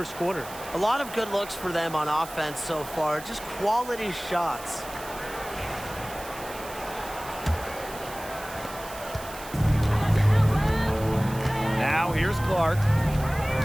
quarter. A lot of good looks for them on offense so far, just quality shots. Now here's Clark.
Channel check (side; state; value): right; noise; hiss, 15 dB below the sound